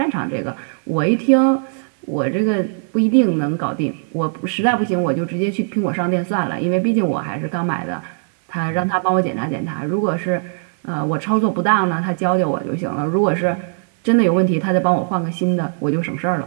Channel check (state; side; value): silent; left; digital silence